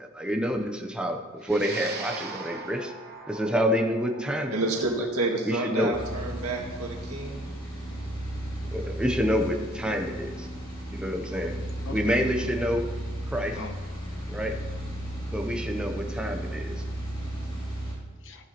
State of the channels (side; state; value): both; normal; correlation 0.64